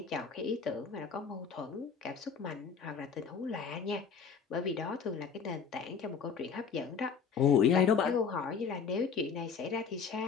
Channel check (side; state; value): right; quieter; 6.2 dB